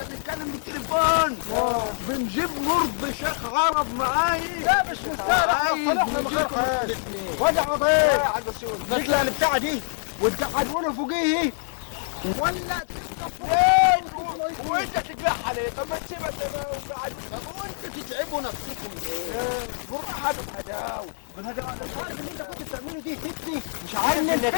بنتكلم بالتليفون بنجيب مرض شيخ عرب معايا. لا مش مستاهل، احنا صلحنا من غير خير. وجع يا عضيق حاج بسيوني نطلع البتاعه دي وتقعدونا فوقيه ولا فين وانت تجرحها ليه؟ طب ما تسيبها زي ما هو قاعد. طب وانتوا تتعبوا نفسكم ليه؟ بالراحه بالهداوه. مش عارف اللي انت كنت بتعمله دي فتني، مش عارف انك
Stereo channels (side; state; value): right; silent; digital silence